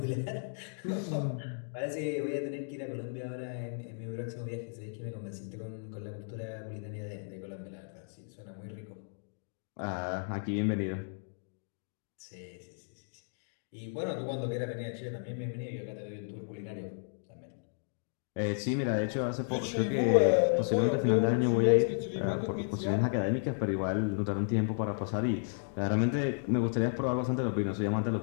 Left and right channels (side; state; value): right; silent; digital silence